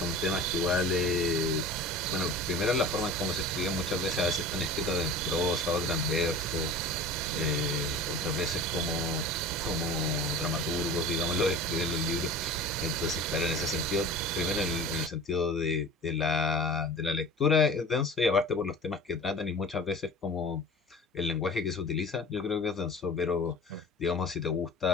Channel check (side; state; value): both; normal; correlation 0.38